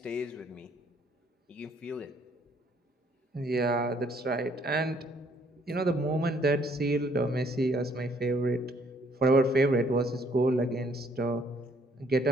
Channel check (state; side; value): normal; both; correlation 0.65